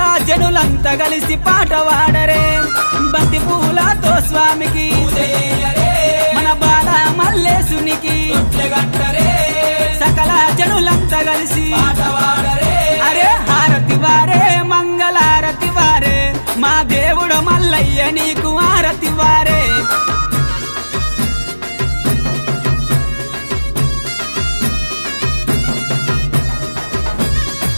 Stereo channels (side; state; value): both; inverted; correlation -1.00